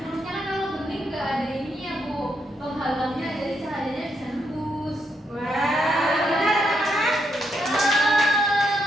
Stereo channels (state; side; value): normal; both; correlation 0.79